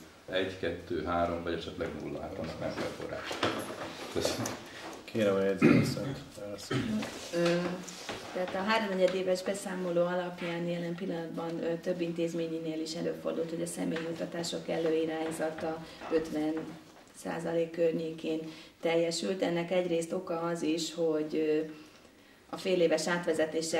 1, 2, 3 vagy esetleg 0, hát annak nem kell forrás. Köszönöm. Kérem a jegyzőasszonyt. Tehát a 3-4 éves beszámoló alapján jelen pillanatban több intézményinél is előfordult, hogy a személyjutatások előirányzata 50% környékén teljesült. Ennek egyrészt oka az is, hogy a féléves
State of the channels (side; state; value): both; identical; correlation 1.00